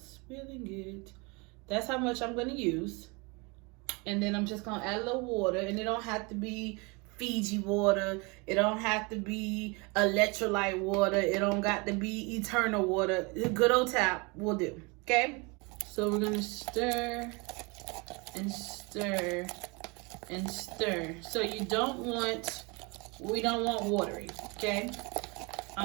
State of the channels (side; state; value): left; quieter; 28.7 dB